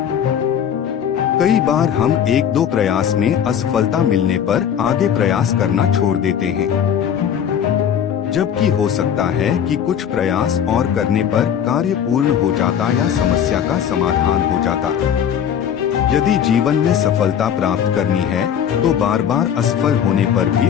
कई बार हम 1-2 प्रयास में असफलता मिलने पर आगे प्रयास करना छोड़ देते हैं, जबकि हो सकता है कि कुछ प्रयास और करने पर कार्य पूर्ण हो जाता या समस्या का समाधान हो जाता। यदि जीवन में सफलता प्राप्त करनी है तो बार बार असफल होने पर भी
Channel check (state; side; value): quieter; right; 8.7 dB